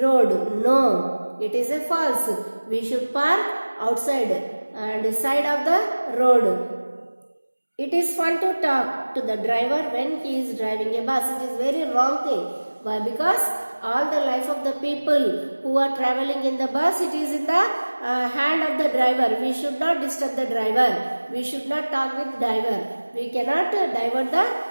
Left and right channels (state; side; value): inverted; both; correlation -1.00